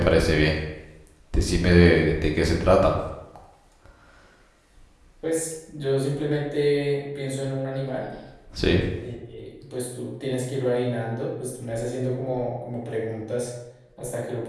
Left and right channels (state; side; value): identical; both; correlation 1.00